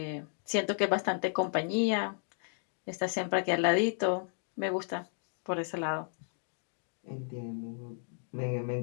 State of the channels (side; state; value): right; silent; digital silence